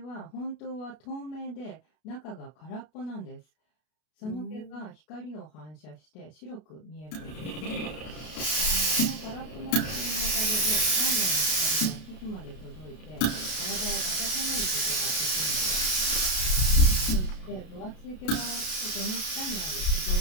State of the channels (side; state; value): right; late; 33 ms